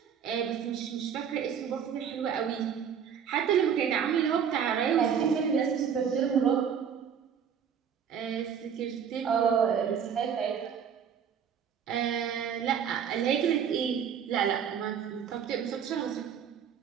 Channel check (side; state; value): left; quieter; 7.8 dB